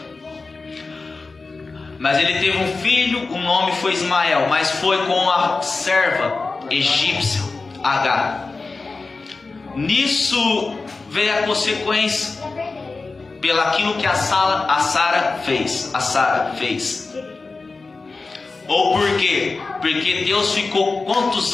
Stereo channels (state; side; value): quieter; right; 3.9 dB